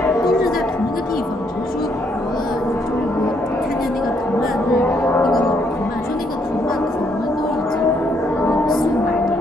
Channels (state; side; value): normal; both; correlation 0.72